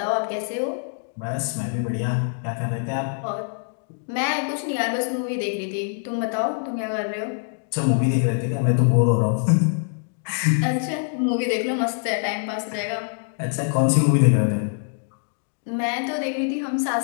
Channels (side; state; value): right; silent; digital silence